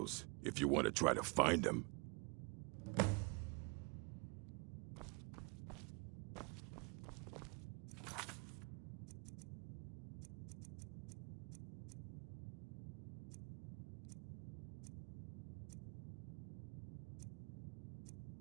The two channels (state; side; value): quieter; left; 31.5 dB